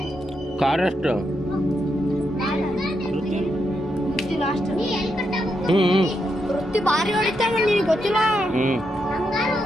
ಕಾರಷ್ಟು ವೃತ್ತಿ ಭಾರಿ ಹೊಡಿತಾನೆ ನಿನಗೆ ಗೊತ್ತಿಲ್ಲ.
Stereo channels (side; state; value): both; normal; correlation 0.82